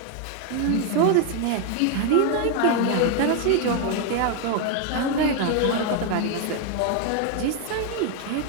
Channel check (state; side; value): different; both; correlation 0.01